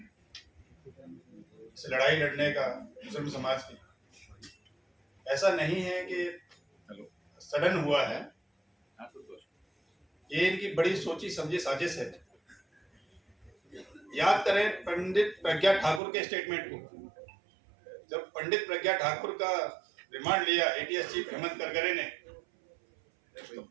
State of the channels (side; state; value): left; drops out; at 16.0 s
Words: इस लड़ाई लड़ने का मुस्लिम समाज की ऐसा नहीं है कि सडन हुआ है, ये इनकी बड़ी सोची समझी साजिश है। याद करें पंडित प्रज्ञा ठाकुर के स्टेटमेंट को। जब पंडित प्रज्ञा ठाकुर का रिमांड लिया एटीएस चीफ हेमंत करकरे ने, तो